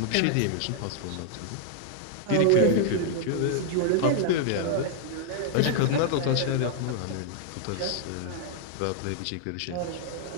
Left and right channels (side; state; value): both; different; correlation -0.01